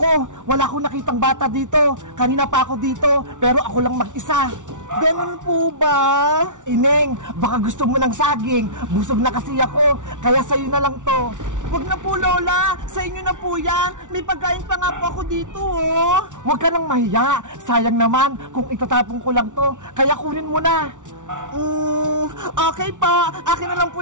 Wala akong nakitang bata dito! Kanina pa ako dito, pero ako lang mag-isa! Ganun po ba? Ineng, baka gusto mo ng saging. Busog na kasi ako, kaya sa'yo na lang to. Huwag na po, Lola. Sa inyo na po yan. May pagkain pa nga po ako dito, oh. Huwag ka nang mahiya. Sayang naman kung itatapon ko lang to. Kaya kunin mo na. Okay pa. Akin na lang po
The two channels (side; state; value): left; late; 0.87 ms